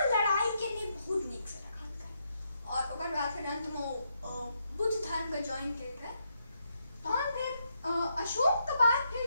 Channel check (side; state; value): both; inverted; correlation -0.79